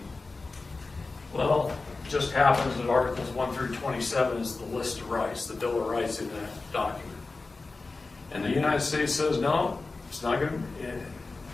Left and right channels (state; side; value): quieter; right; 3.7 dB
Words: Well, it just happens that Articles 1 through 27 is the list of rights, the Bill of Rights in that document. And the United States says, no, it's not going to,